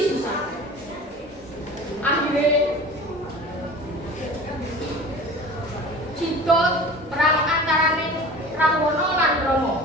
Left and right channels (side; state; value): both; normal; correlation 0.39